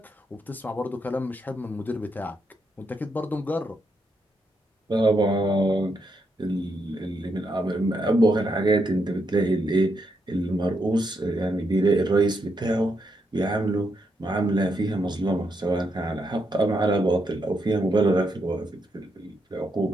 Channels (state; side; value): normal; both; correlation 0.80